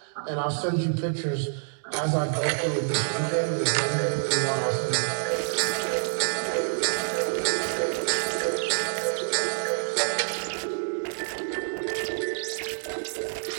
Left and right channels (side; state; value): left; silent; digital silence